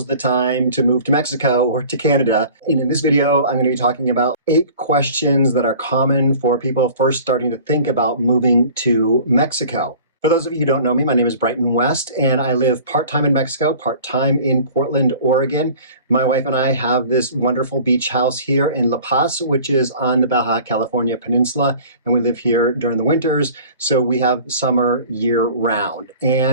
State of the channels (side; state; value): both; inverted; correlation -0.45